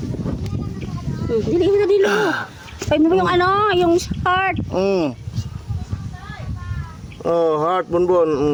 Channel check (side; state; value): both; identical; correlation 1.00